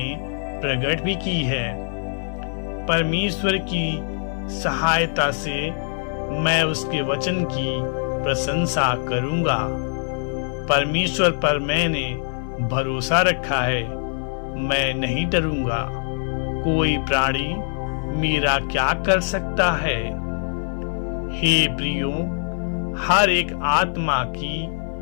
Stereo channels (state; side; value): silent; right; digital silence